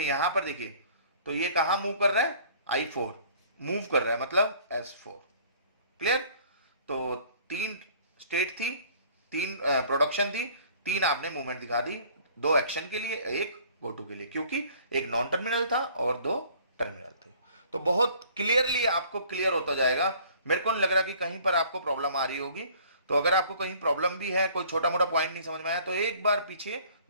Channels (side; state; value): both; inverted; correlation -0.54